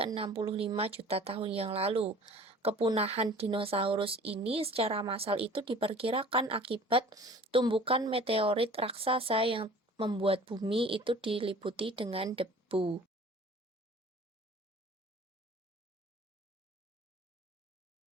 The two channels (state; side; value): normal; both; correlation 0.46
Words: 65 juta tahun yang lalu. Kepunahan dinosaurus ini secara massal itu diperkirakan akibat tumbukan meteorit raksasa yang membuat bumi itu diliputi dengan debu.